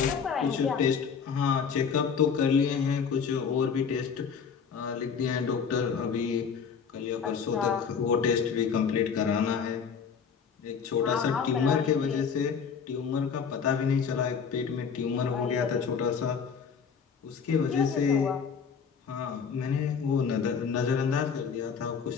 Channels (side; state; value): right; quieter; 6.4 dB